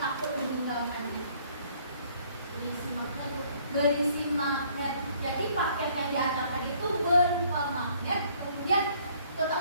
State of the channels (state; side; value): inverted; both; correlation -0.61